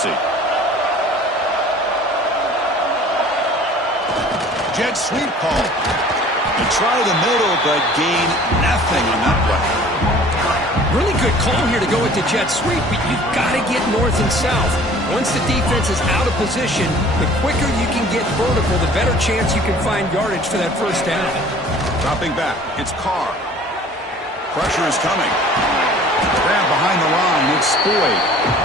Jet sweep call. They try the middle, but gain nothing on that play. Really good call here to go with the jet sweep, but you've got to get north and south. Once the defense is out of position, the quicker you can get vertical, the better chance you can find yardage for that first down. Dropping back. It's Carr. Pressure is coming. Grab behind the line. It's Boyd.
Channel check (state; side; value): normal; both; correlation 0.49